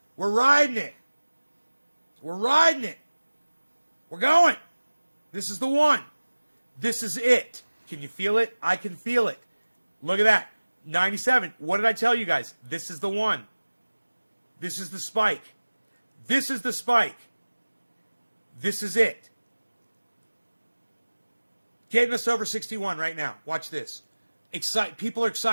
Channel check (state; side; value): inverted; both; correlation -1.00